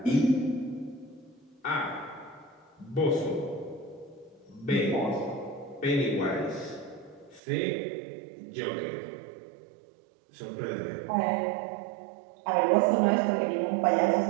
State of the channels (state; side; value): drops out; left; at 7.4 s